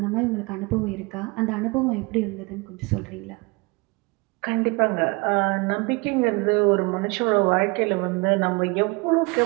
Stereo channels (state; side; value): quieter; left; 26.8 dB